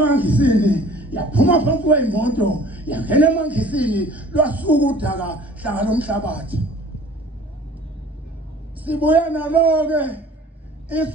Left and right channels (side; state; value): both; normal; correlation 0.48